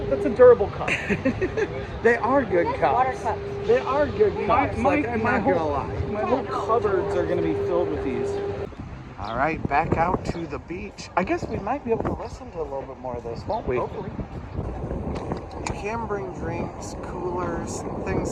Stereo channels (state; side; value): identical; both; correlation 1.00